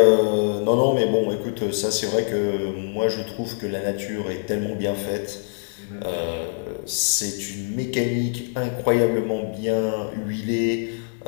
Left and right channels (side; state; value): right; silent; 63 dB below the other